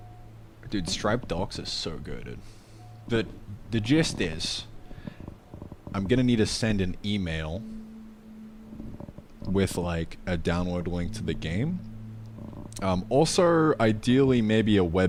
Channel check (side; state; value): both; identical; correlation 1.00